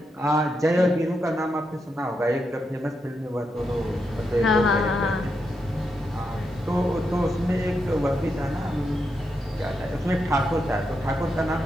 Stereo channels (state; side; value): normal; both; correlation 0.84